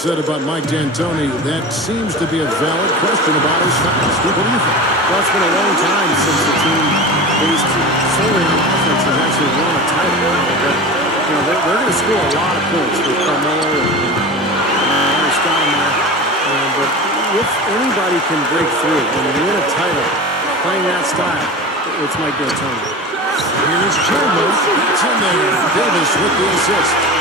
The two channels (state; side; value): normal; both; correlation 0.31